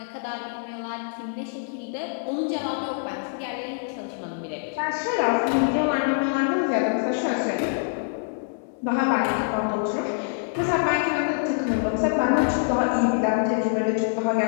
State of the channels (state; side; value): silent; right; digital silence